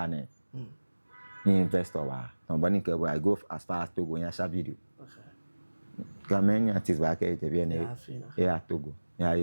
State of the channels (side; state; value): both; inverted; correlation -1.00